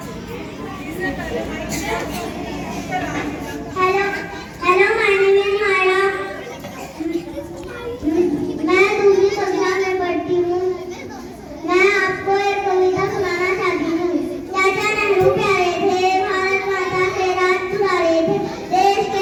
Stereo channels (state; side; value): identical; both; correlation 1.00